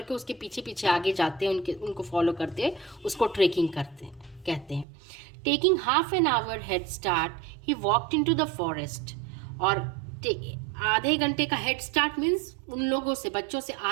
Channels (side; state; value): left; drops out; at 4.9 s